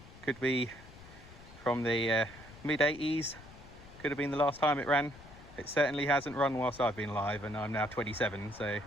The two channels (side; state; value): left; noise; rumble, 19 dB below the sound